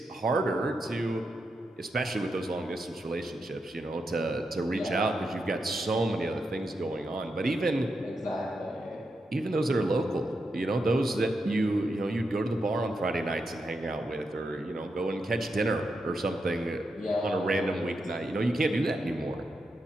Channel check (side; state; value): both; normal; correlation 0.85